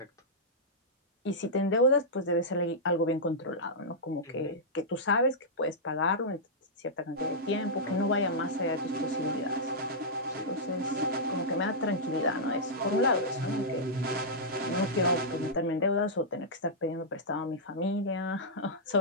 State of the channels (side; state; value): both; normal; correlation -0.12